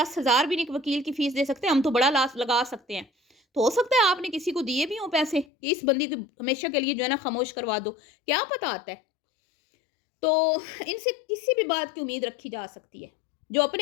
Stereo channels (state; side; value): drops out; right; at 5.5 s